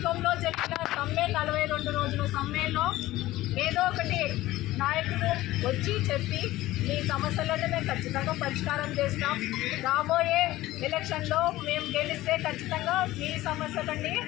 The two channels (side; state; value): right; quieter; 16.7 dB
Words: జరిగిన సమ్మె 42 రోజుల సమ్మెలో ఏదో ఒకటి నాయకులు వచ్చి చెప్పి మీ సమస్యలను మేము ఖచ్చితంగా పరిష్కారం చేస్తాం, రాబోయే ఎలక్షన్లో మేము గెలిస్తే ఖచ్చితంగా మీ సమస్యలన్నీ